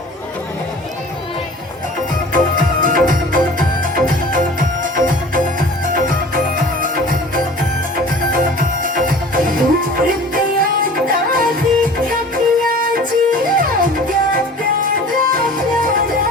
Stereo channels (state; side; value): normal; both; correlation 0.43